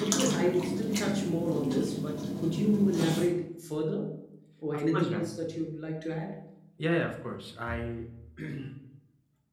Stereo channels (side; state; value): both; identical; correlation 1.00